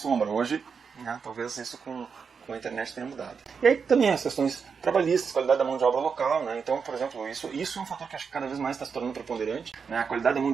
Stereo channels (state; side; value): quieter; left; 5.9 dB